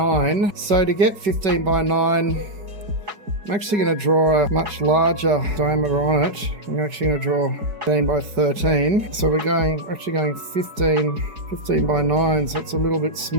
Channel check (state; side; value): late; left; 4.7 ms